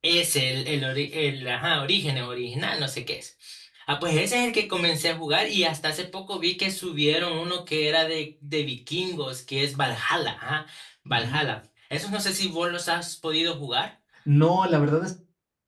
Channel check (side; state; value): both; identical; correlation 1.00